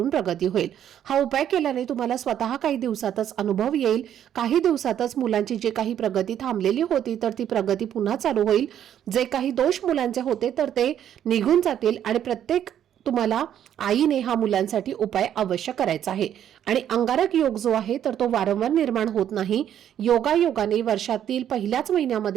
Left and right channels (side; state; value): left; quieter; 10.2 dB